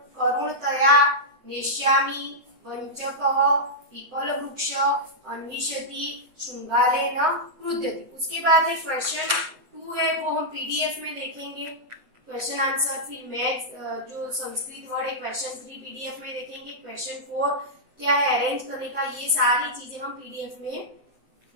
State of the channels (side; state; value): left; late; 7.7 ms